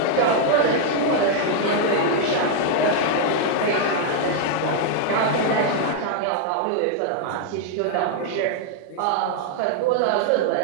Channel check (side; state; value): both; different; correlation -0.01